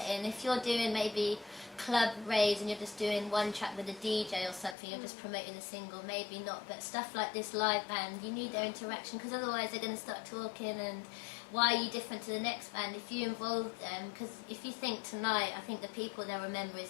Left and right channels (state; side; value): drops out; right; at 4.8 s